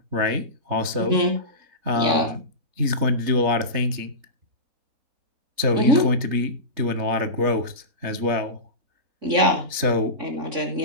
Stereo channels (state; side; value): late; left; 3.4 ms